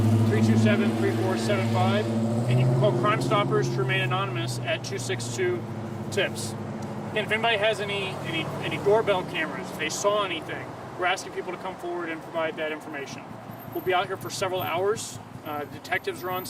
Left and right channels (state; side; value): identical; both; correlation 1.00